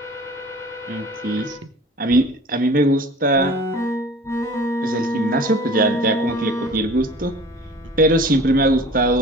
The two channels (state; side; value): normal; both; correlation 0.44